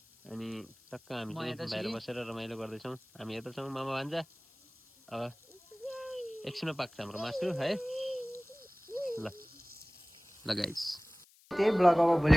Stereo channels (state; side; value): noise; left; hiss, 28 dB below the sound